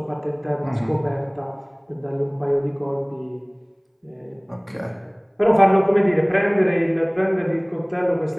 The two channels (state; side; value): identical; both; correlation 1.00